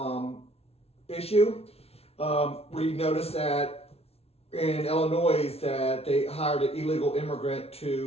issue. We noticed that in Illinois that they hired an illegal immigrant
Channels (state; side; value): late; right; 0.30 ms